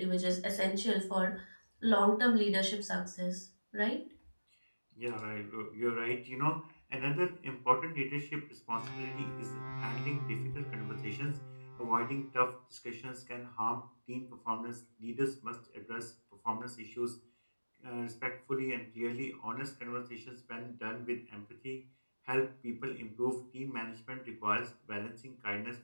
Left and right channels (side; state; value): both; inverted; correlation -1.00